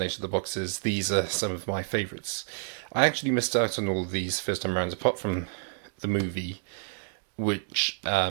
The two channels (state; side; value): silent; left; digital silence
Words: of the boxes, these are some of my favourites. I actually missed out on all of these first time around, apart from the movie, which